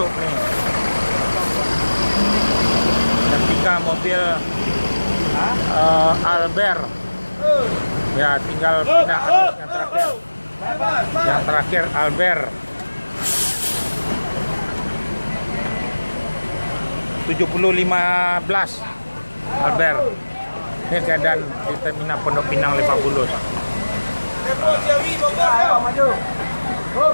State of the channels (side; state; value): both; inverted; correlation -1.00